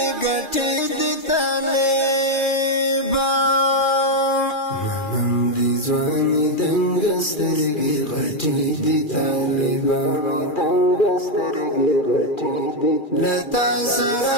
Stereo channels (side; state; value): right; late; 2.4 ms